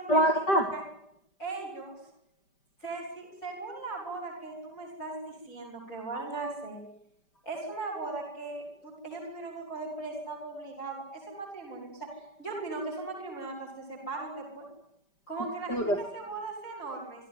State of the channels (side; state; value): right; late; 5.2 ms